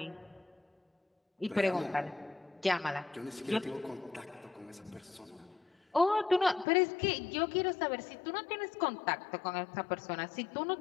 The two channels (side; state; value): right; drops out; at 6.7 s